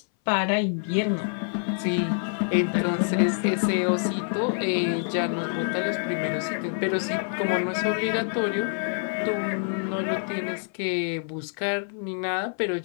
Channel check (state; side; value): silent; right; 60 dB below the other